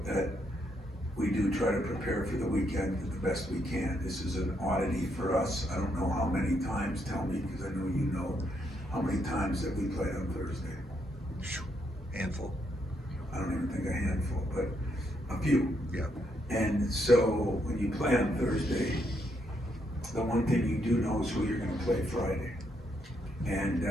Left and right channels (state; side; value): normal; both; correlation 0.76